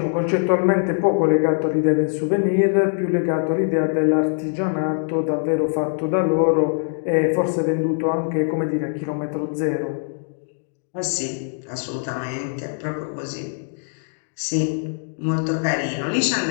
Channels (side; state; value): right; silent; digital silence